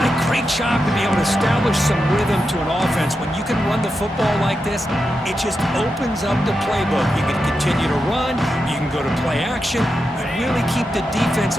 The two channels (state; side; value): normal; both; correlation 0.88